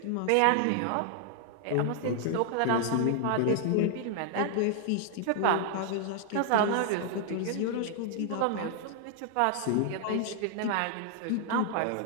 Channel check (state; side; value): different; both; correlation 0.00